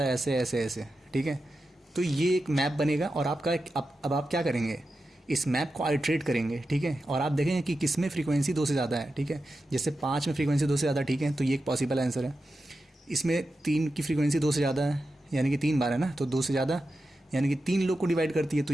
ऐसे ऐसे ऐसे, ठीक है। तो ये एक मैप बनेगा और आपका अब आप क्या करेंगे, इस मैप को आइट्रेट करेंगे, ठीक है, और आप देखेंगे कि किस में फ्रीक्वेंसी 2 से ज़्यादा है, ठीक है। जैसे 5 में फ्रीक्वेंसी 2 से ज़्यादा, ठीक है, तो ये एक पॉसिबल आंसर है। इसमें 3 की फ्रीक्वेंसी 2 से ज़्यादा है, यानी कि 3 बार है ना, तो 2 से ज़्यादा यानी कि 3 लोग को डिवाइड करती है, तो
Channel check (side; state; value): both; normal; correlation 0.90